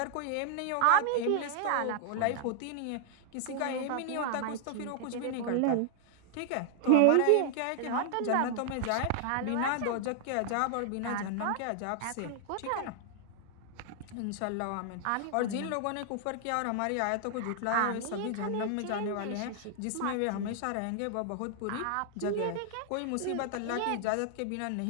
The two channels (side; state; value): both; different; correlation 0.00